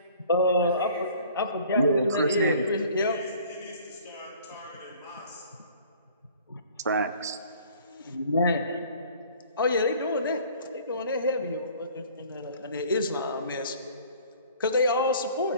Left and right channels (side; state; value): both; inverted; correlation -0.52